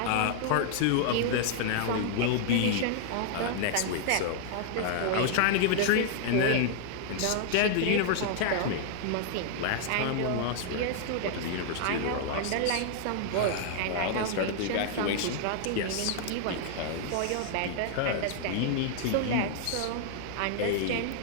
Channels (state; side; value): different; both; correlation 0.00